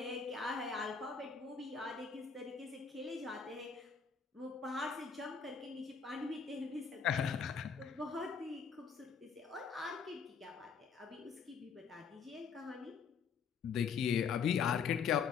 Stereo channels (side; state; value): right; quieter; 6.1 dB